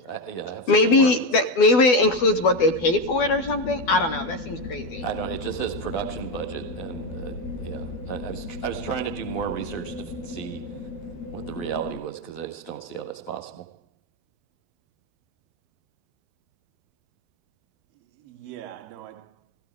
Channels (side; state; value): right; late; 12 ms